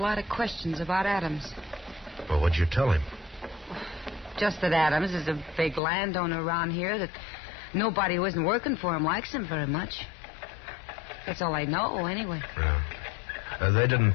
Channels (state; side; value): drops out; right; at 5.8 s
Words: of questions about Adams. Well, what'd you tell him? Just that Adams is a big landowner around here, that nobody who isn't working for him likes him very much. That's all I know, anyway. Yeah. They didn't